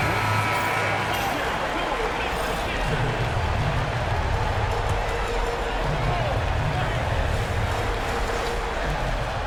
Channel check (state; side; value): identical; both; correlation 1.00